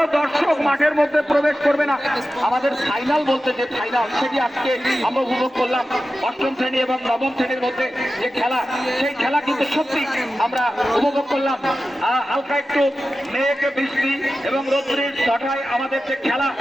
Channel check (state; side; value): normal; both; correlation 0.93